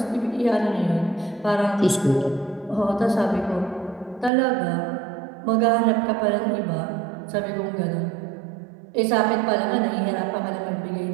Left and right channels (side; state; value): left; drops out; at 4.3 s